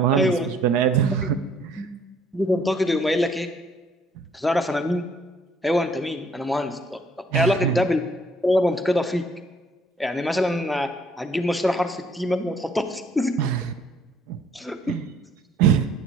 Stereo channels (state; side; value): normal; both; correlation 0.62